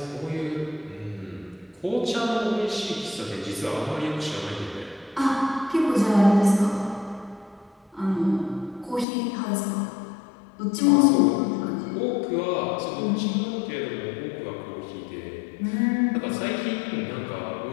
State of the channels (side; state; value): right; drops out; at 9.1 s